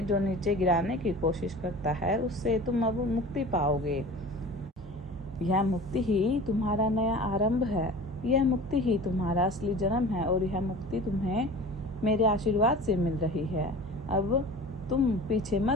जो नीचे गिराने की कोशिश करता है उससे तुम अब मुक्ति पाओगे। यह मुक्ति ही तुम्हारा नया आरंभ है। यह मुक्ति ही तुम्हारा असली जन्म है, और यह मुक्ति तुम्हें मेरे आशीर्वाद से मिल रही है। अब तुम पीछे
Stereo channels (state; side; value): normal; both; correlation 0.39